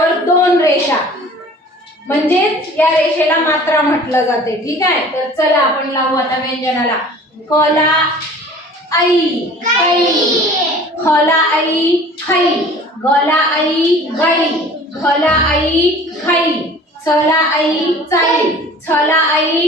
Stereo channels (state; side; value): normal; both; correlation 0.46